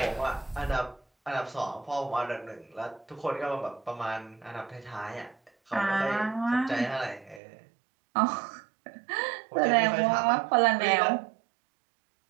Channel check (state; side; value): drops out; left; at 7.4 s